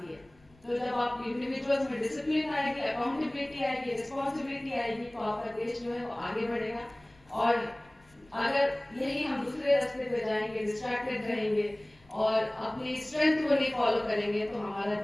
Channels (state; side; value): noise; left; rumble, 29 dB below the sound